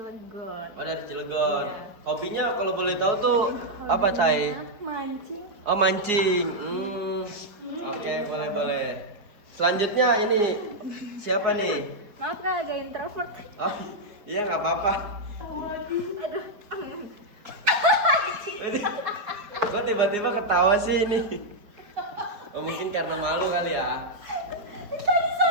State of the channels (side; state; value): left; late; 4.8 ms